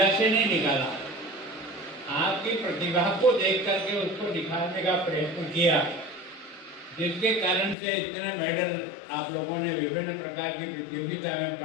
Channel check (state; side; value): drops out; right; at 7.8 s